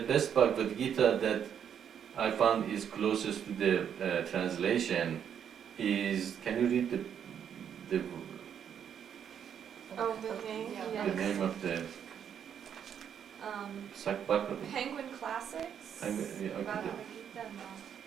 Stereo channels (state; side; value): quieter; left; 8.5 dB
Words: Bhagavad Gita that I found is closest to the translation is, can you read the Oh, the name, Yeah. The yes. name of the Um, Sakbaka? Penguin Classics. Yeah, okay. Bhagavad Gita,